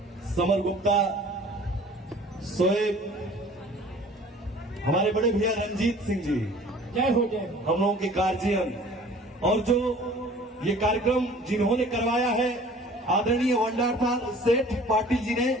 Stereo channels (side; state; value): both; normal; correlation 0.48